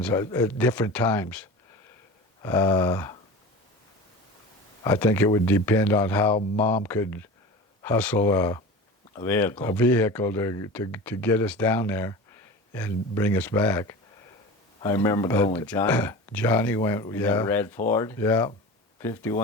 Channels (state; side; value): normal; both; correlation 0.33